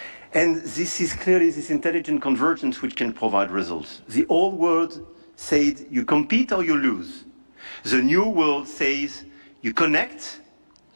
And this is clearly this intelligent convergence which can provide results. The old world said you compete or you lose. The new world says you connect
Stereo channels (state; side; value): inverted; both; correlation -1.00